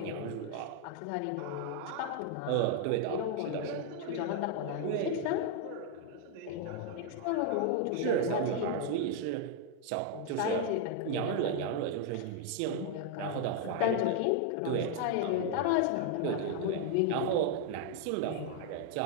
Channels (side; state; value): both; different; correlation 0.00